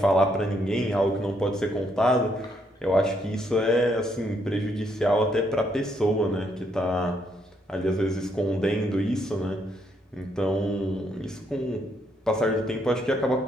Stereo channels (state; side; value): normal; both; correlation 0.74